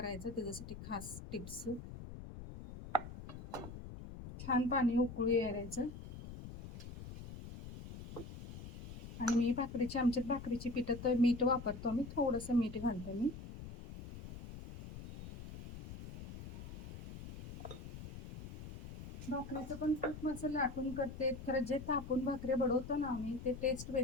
त्याच्यासाठी खास टिप्स. छान पाणी उकळू यायचं. आणि मी आमच्यात भाकरीची पिठात मीठ वापरतो आम्ही. थोडंसं मीठ घालतो मी. भाकरीचं पण खूप असं लाटून करते. खरं जे तापून भाकरी बडवतो ना आम्ही ते टेस्ट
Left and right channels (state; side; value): noise; left; rumble, 11 dB below the sound